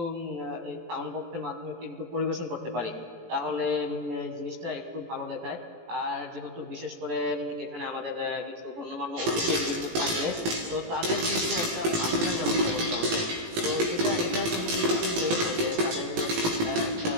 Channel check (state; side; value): late; left; 18 ms